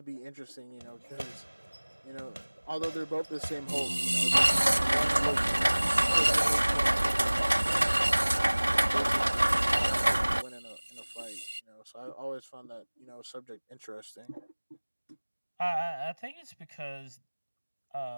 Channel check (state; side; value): inverted; both; correlation -1.00